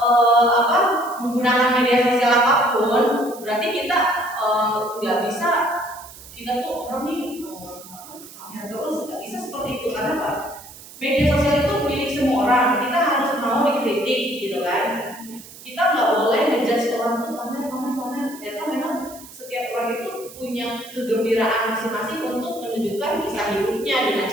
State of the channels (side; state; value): right; noise; hiss, 18 dB below the sound